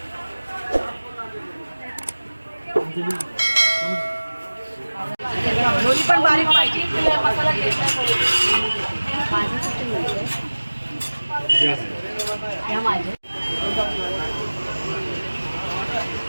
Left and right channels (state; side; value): inverted; both; correlation -1.00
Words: दोन्ही पण बारीक पाहिजे. मसाला